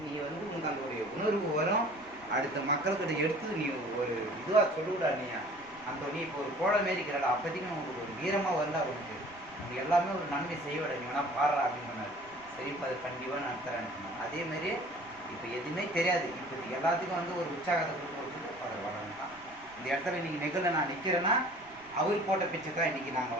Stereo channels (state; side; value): noise; right; rumble, 26 dB below the sound